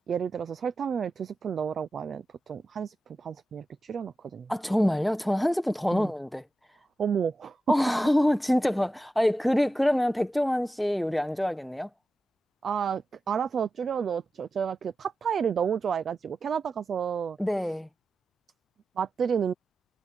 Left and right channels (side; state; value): both; normal; correlation 0.92